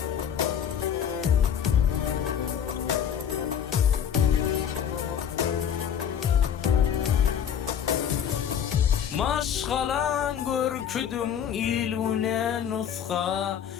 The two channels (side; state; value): right; quieter; 8.7 dB